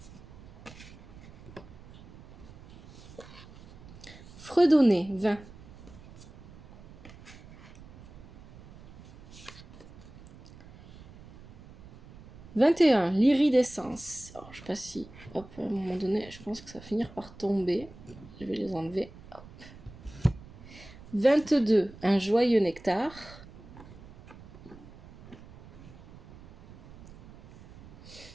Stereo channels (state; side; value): noise; right; rumble, 19 dB below the sound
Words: Fredonner, 20. 21. L'iridescence. Alors, je sais pas si... Hop, à un moment donné, je pense que ça va finir par tomber. Je vais les enlever. Hop. 22. Un joyeux nectar.